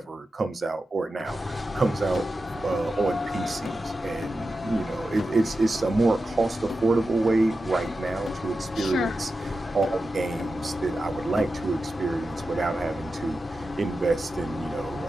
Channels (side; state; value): both; normal; correlation 0.91